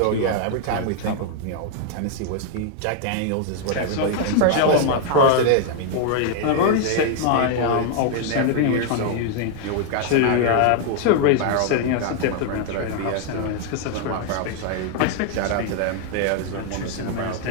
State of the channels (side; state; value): both; different; correlation 0.00